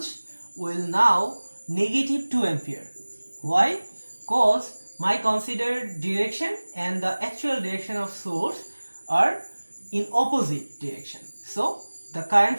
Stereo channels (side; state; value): both; inverted; correlation -1.00